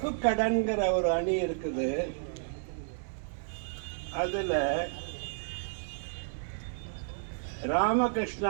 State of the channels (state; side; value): silent; left; digital silence